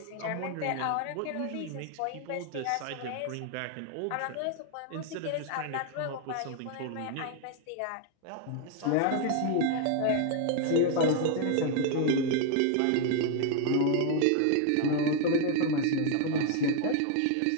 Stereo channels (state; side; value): different; both; correlation 0.00